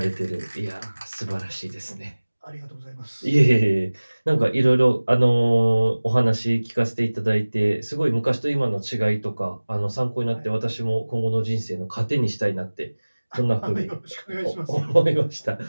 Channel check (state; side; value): inverted; both; correlation -1.00